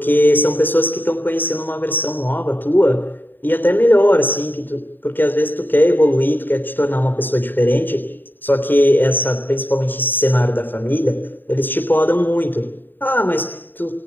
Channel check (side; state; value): right; late; 0.092 ms